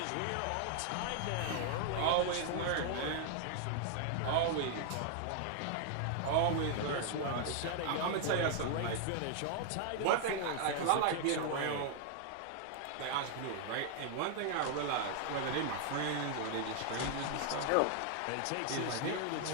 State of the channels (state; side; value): different; both; correlation 0.00